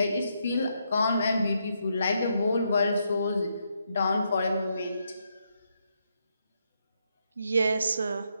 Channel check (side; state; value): both; inverted; correlation -0.79